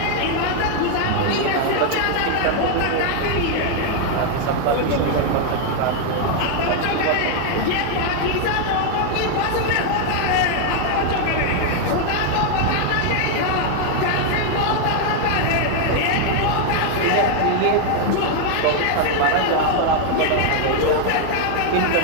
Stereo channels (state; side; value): different; both; correlation 0.00